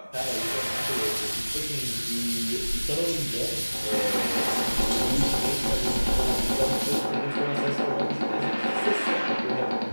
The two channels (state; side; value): inverted; both; correlation -1.00